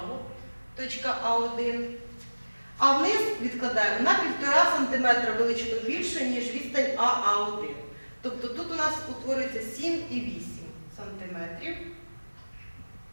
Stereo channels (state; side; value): inverted; both; correlation -1.00